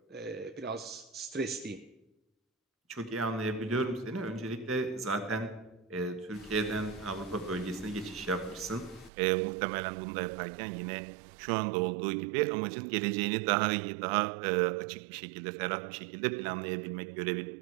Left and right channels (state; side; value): drops out; left; at 9.1 s